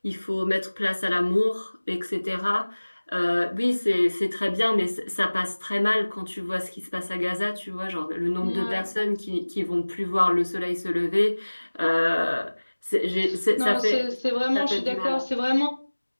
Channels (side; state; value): both; inverted; correlation -1.00